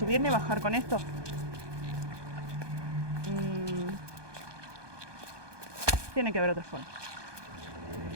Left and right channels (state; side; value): late; left; 1.2 ms